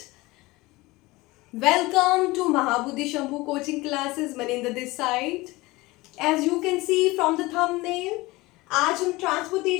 Welcome to Mahabudhi Shambhu coaching classes. Maninder this side. As you can see from the thumbnail, आज हम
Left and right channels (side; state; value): right; quieter; 21.1 dB